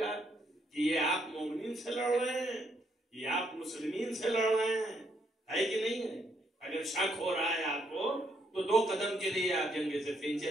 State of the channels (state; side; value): normal; both; correlation 0.73